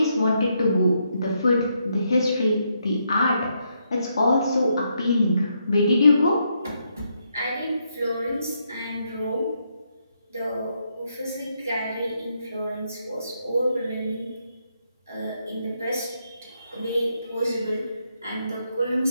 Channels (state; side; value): inverted; both; correlation -0.78